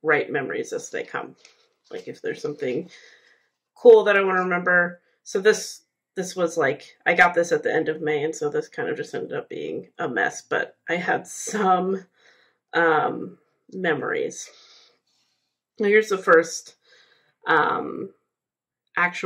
write memories as they come. Like if there's something cool that I want to remember. So this was like, I got this at the end of May, and so this kind of just ended up being a mess, but I had some memories. Now here's the first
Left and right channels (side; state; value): both; identical; correlation 1.00